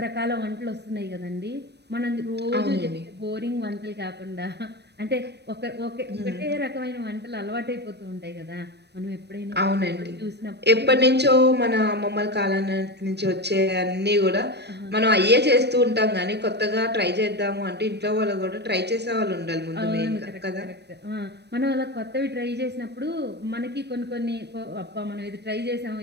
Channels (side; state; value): left; late; 0.49 ms